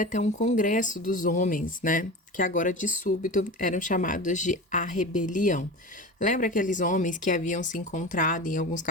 um congresso dos homens, né? Que agora de súbito eram chamados de A Rebelião. Lembra aqueles homens que haviam se encontrado em alguns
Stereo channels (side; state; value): both; normal; correlation 0.30